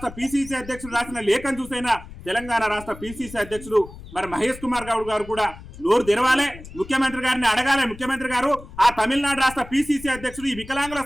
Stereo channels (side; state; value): left; noise; rumble, 16 dB below the sound